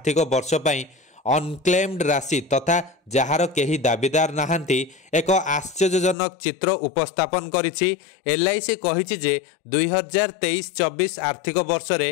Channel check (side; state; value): right; drops out; at 6.2 s